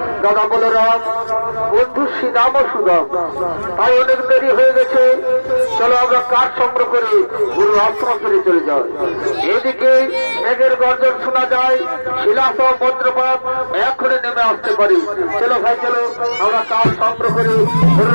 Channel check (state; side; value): inverted; both; correlation -1.00